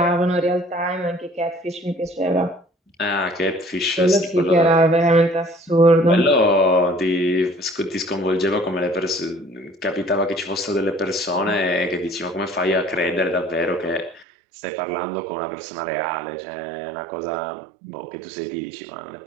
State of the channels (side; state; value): left; drops out; at 14.2 s